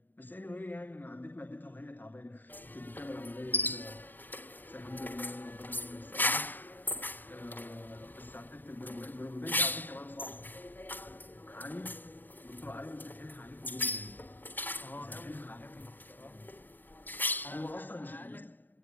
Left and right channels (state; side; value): late; right; 0.090 ms